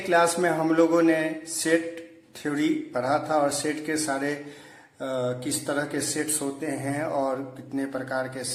में हम लोगों ने सेट थ्योरी पढ़ा था और सेट के सारे किस तरह के सेट्स होते हैं और कितने प्रकार के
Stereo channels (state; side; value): identical; both; correlation 1.00